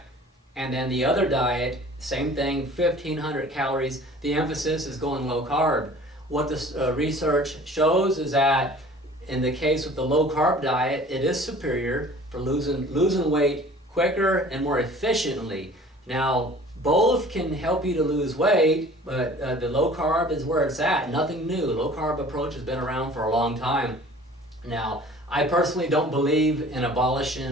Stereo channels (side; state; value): both; normal; correlation 0.47